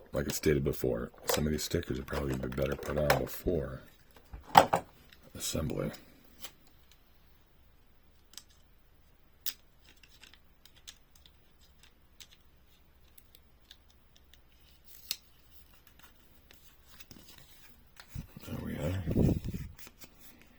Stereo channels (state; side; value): identical; both; correlation 1.00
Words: Like I stated before, some of these stickers are probably going to be better put on before assembly. There we are.